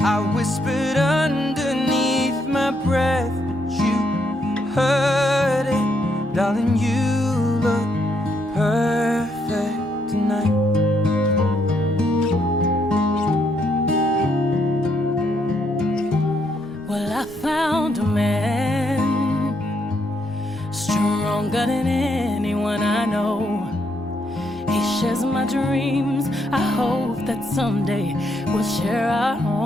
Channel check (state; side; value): noise; left; hum, 25 dB below the sound